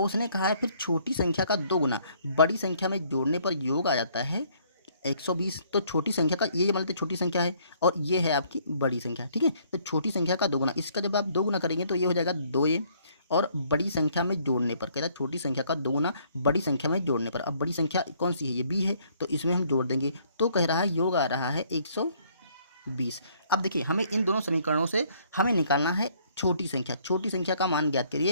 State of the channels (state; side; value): inverted; both; correlation -0.64